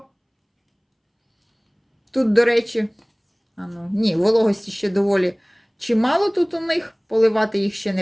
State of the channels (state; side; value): identical; both; correlation 1.00